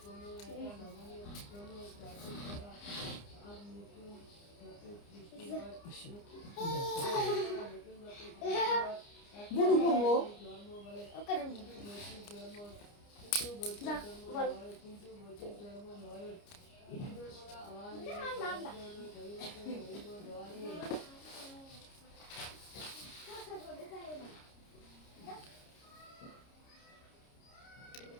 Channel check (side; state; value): right; late; 29 ms